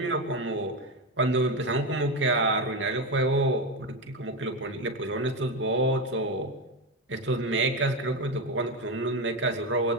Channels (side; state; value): both; normal; correlation 0.14